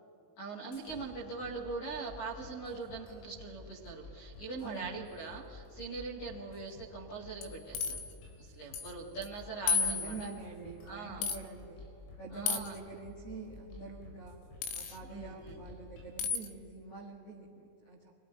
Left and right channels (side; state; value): right; late; 19 ms